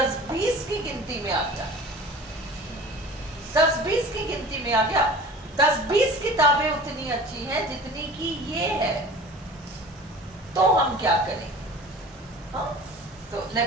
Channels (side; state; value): both; normal; correlation 0.41